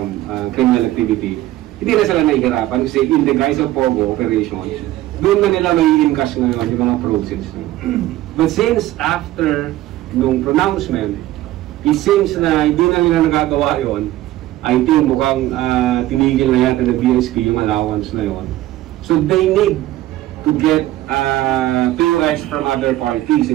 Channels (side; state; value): left; quieter; 15.3 dB